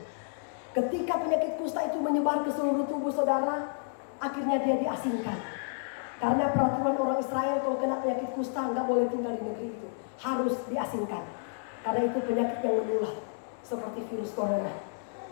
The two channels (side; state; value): right; silent; digital silence